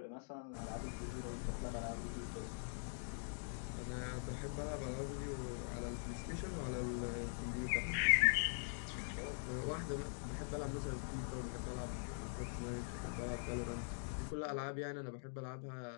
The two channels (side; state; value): right; silent; digital silence